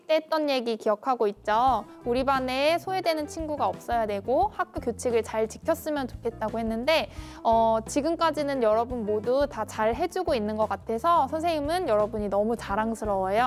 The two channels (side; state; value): both; identical; correlation 1.00